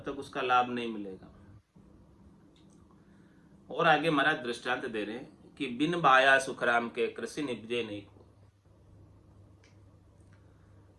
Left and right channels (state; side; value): identical; both; correlation 1.00